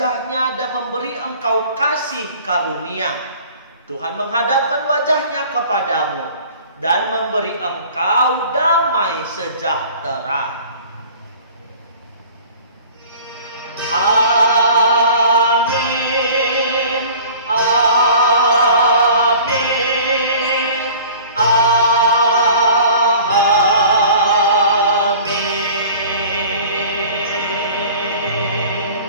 dan memberi engkau kasih karunia. Tuhan menghadapkan wajah-Nya kepadamu dan memberi engkau damai sejahtera. Amin. Amin.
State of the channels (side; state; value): both; inverted; correlation -0.46